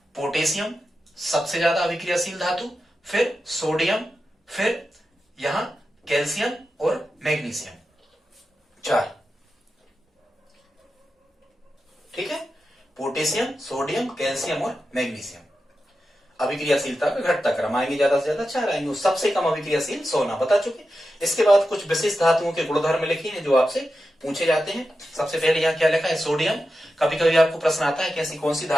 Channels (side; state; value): both; normal; correlation 0.91